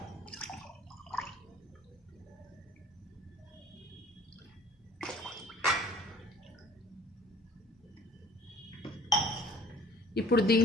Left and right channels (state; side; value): normal; both; correlation 0.52